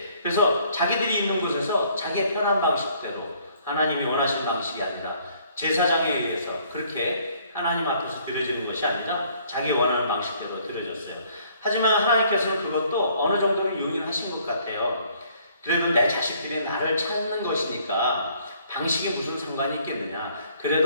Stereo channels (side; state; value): both; inverted; correlation -0.62